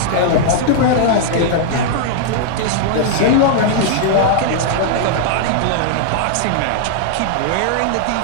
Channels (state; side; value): different; both; correlation -0.01